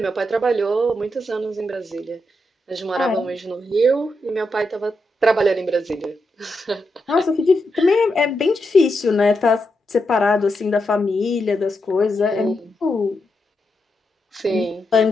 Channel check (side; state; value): both; normal; correlation 0.84